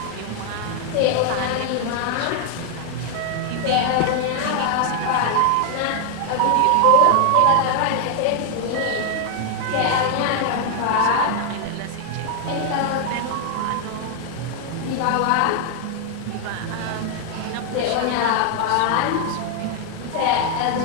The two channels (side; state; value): both; different; correlation 0.00